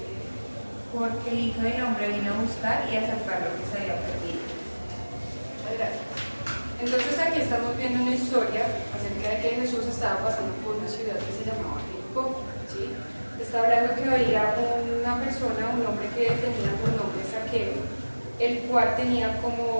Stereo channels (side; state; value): both; inverted; correlation -1.00